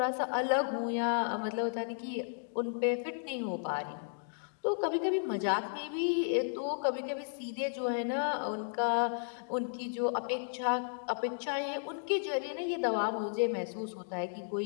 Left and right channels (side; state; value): right; silent; digital silence